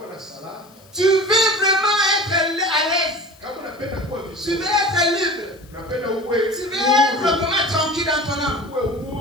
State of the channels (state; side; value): noise; left; hiss, 27 dB below the sound